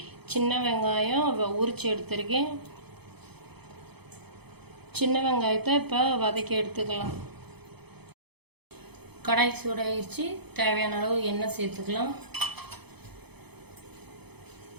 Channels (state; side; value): late; left; 0.98 ms